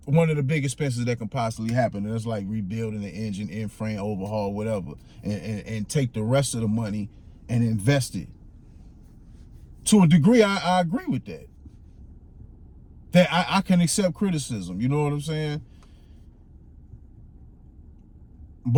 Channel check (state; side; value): identical; both; correlation 1.00